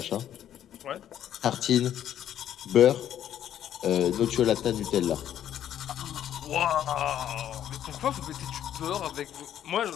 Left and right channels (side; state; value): right; quieter; 10.7 dB